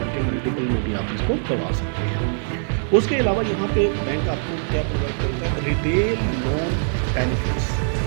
के मल्टीपल में भी आप इसको करवा सकते हैं। उसके अलावा यहाँ पे बैंक आपको क्या प्रोवाइड करता है, रिटेल लोन बेनिफिट्स।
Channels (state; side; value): silent; left; 64 dB below the other